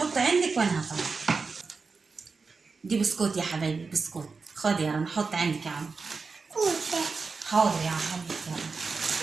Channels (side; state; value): left; quieter; 4.6 dB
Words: عندك وانا هطلع. دي بسكوت يا حبايبي بسكوت. خد يا رنا حط عندك يا عم. حاضر يا عم حبيبتي.